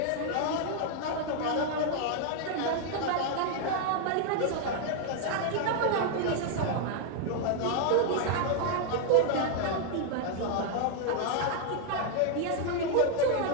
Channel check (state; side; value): different; both; correlation 0.00